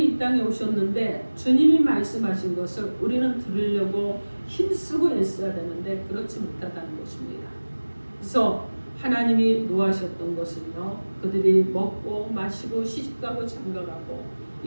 이 땅에 오셨는데 주님이 말씀하신 것을 우리는 들으려고 힘쓰고 애써야 되는데 그렇지 못하다는 것입니다. 그래서 하나님이 노하셨던 것은요, 그들이 먹고 마시고 시집가고 장가가고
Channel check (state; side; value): inverted; both; correlation -1.00